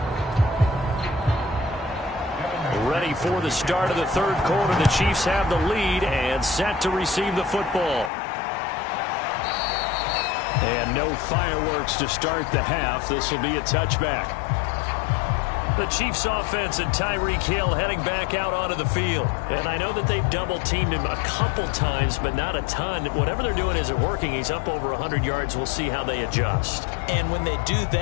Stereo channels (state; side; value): drops out; right; at 8.1 s